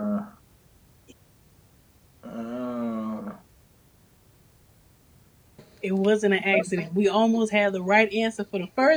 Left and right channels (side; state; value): both; identical; correlation 1.00